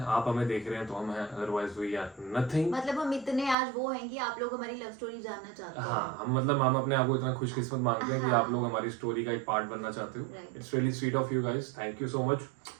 आप हमें देख रहे हैं तो हम हैं, अदरवाइज वी आर नथिंग। मतलब हम इतने आज वो हैं कि आप लोग हमारी लव स्टोरी जानना चाहते हैं। हाँ, हम अपने आप को इतना खुशकिस्मत मानते हैं कि हाँ। आप लोग हमारी स्टोरी का एक पार्ट बनना चाहते हो। Right. It's really sweet of you guys, thank you so much.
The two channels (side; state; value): left; drops out; at 3.6 s